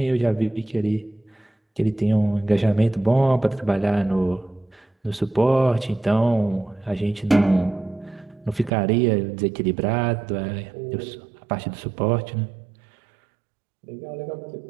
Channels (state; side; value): drops out; left; at 8.7 s